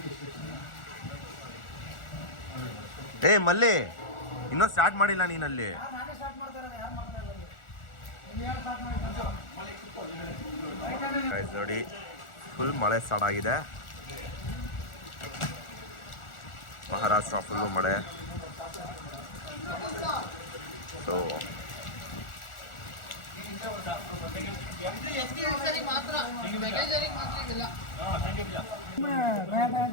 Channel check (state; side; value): late; right; 1.4 ms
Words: ಏ ಮಲ್ಲಿ, ಇನ್ನೂ ಸ್ಟಾರ್ಟ್ ಮಾಡಿಲ್ಲ ನೀನಲ್ಲಿ. ನೋಡಿ ಫುಲ್ ಮಳೆ ಸ್ಟಾರ್ಟ್ ಆಗಿದೆ. ಮಹಾರಾಷ್ಟ್ರ ಫುಲ್ಲು ಮಳೆ. ಸೊ